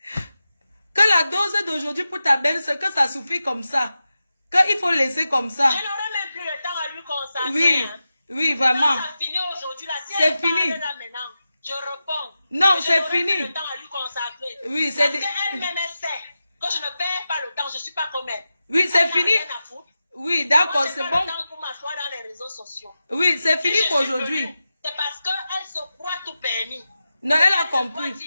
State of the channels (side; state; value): both; inverted; correlation -0.92